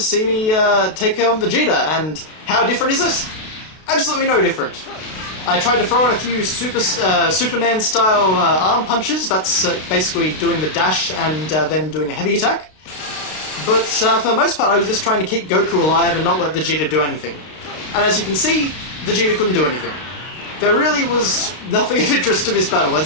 me take on Vegeta, and how different is it? Absolutely no different. I tried to throw in a few Superman-style arm punches. That's basically doing the dash and then doing a heavy attack. But for the most part, I was just trying to keep Goku alive and not let Vegeta do anything. And as you can see, Vegeta couldn't do anything. There really was nothing of interest to this battle.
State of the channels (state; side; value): late; right; 32 ms